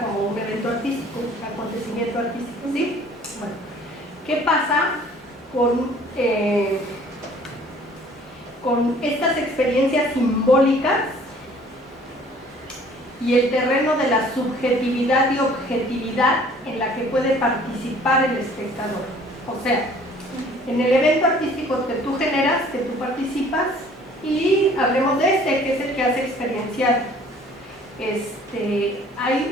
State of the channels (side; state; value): both; normal; correlation 0.54